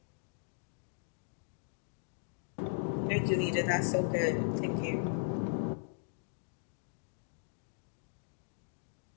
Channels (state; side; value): silent; right; digital silence